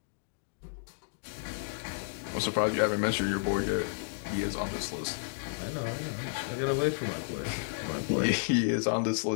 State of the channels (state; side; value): silent; right; digital silence